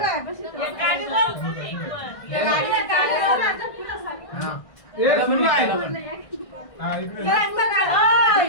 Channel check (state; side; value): late; right; 1.6 ms